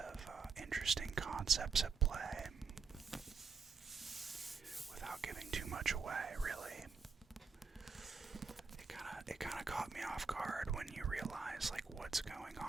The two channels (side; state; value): left; quieter; 5.1 dB